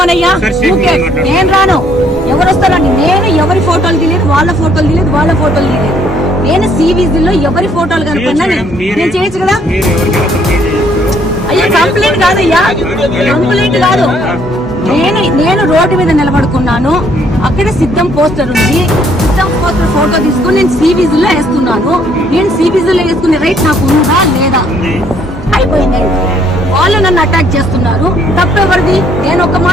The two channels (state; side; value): normal; both; correlation 0.66